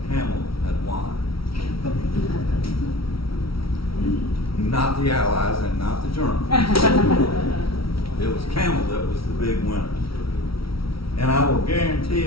Camel had won. Not the Allies and not the Germans. It was Camel that was the big winner. And I will guarantee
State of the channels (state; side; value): late; right; 0.75 ms